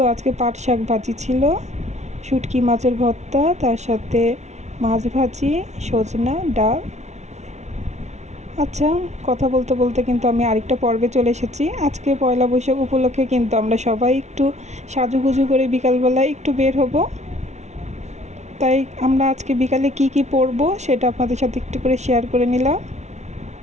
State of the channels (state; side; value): late; left; 0.32 ms